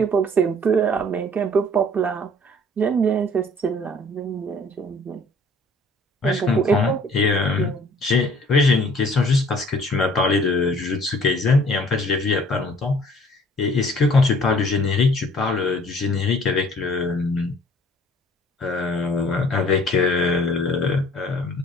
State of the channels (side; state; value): both; normal; correlation 0.55